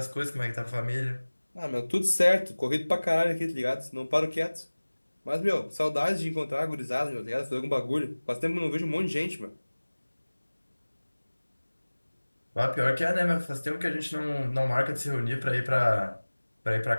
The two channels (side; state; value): both; inverted; correlation -1.00